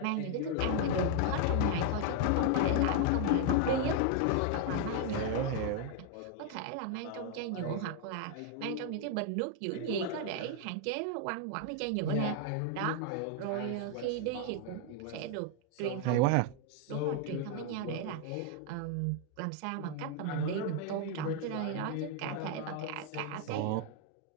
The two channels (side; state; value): both; different; correlation 0.00